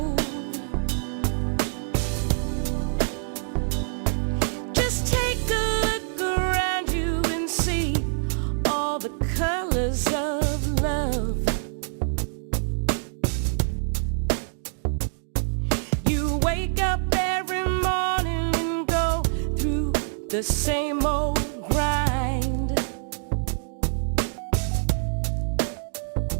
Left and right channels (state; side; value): silent; left; 61 dB below the other